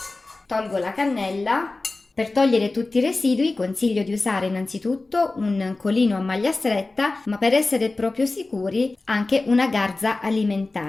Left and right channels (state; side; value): quieter; right; 3.3 dB